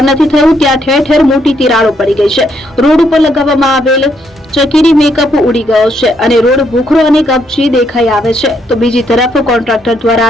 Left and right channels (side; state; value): both; normal; correlation 0.74